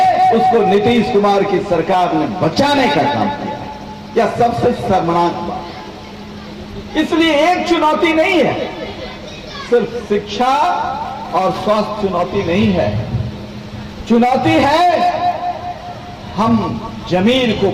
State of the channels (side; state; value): both; identical; correlation 1.00